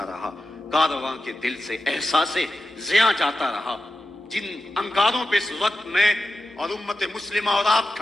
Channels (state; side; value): normal; both; correlation 0.91